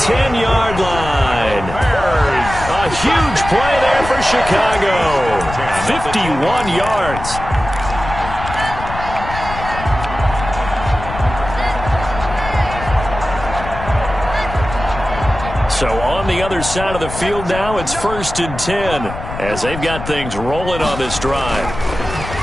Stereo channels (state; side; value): noise; left; rumble, 9 dB below the sound